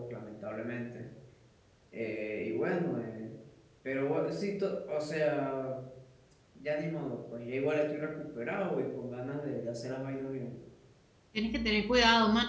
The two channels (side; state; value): both; identical; correlation 1.00